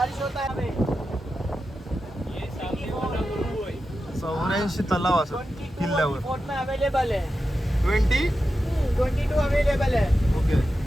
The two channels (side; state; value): both; normal; correlation 0.91